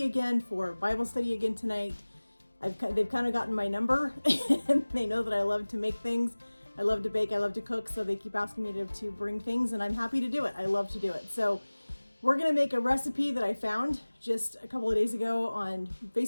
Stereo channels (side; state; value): both; inverted; correlation -1.00